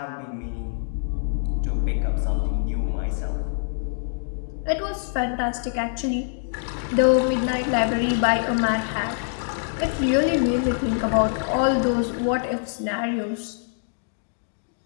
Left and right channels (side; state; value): right; silent; digital silence